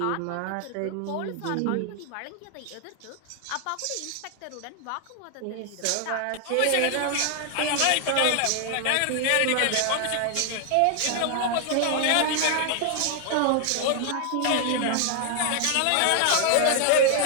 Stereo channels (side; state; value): both; different; correlation 0.00